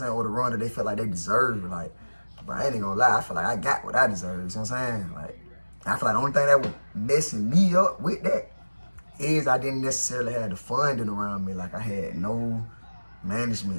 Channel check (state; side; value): inverted; both; correlation -1.00